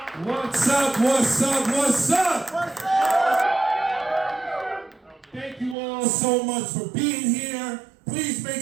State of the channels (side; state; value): left; drops out; at 5.8 s